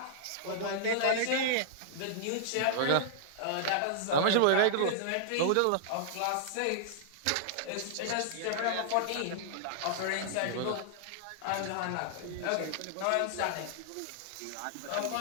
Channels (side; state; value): both; different; correlation -0.01